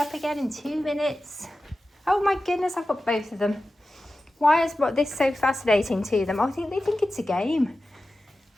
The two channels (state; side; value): normal; both; correlation 0.94